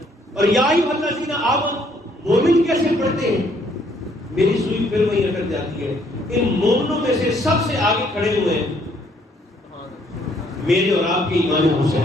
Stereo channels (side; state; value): both; normal; correlation 0.66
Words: اور یا ایھا الذین آمنوا مومن کیسے پڑھتے ہیں؟ میری سوئی پھر وہیں اٹک جاتی ہے. ان مومنوں میں سے سب سے آگے کھڑے ہوئے ہیں میرے اور آپ کے امام